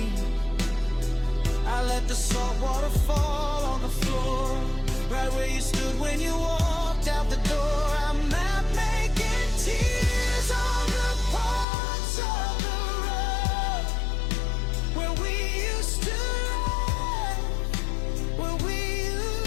I let the salt water fall on the floor, right where you stood when you walked out the door. I'm not making tears on the parts of the road where we used to laugh, where we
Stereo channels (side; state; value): right; drops out; at 11.7 s